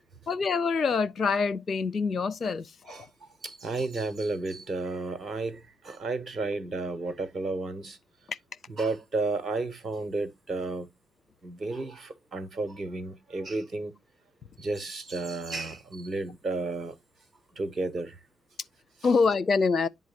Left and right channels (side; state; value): both; normal; correlation 0.78